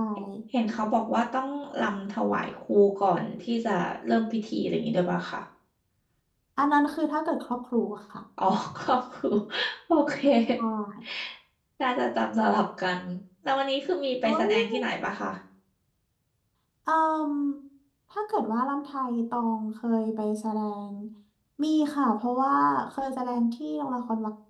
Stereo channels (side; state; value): both; identical; correlation 1.00